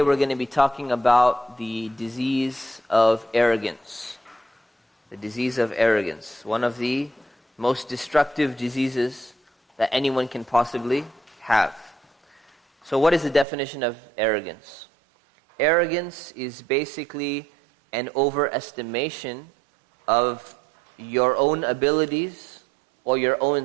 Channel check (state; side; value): drops out; left; at 13.5 s